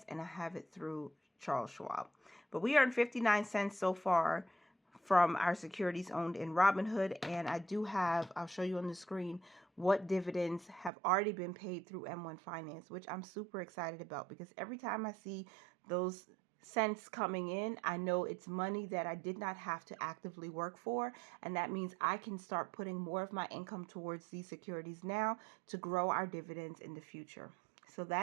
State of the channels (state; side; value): drops out; left; at 10.9 s